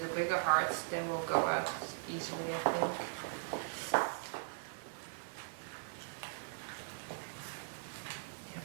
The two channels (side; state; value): left; silent; 51 dB below the other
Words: bigger hearts, they will go out easily, I think. Yep,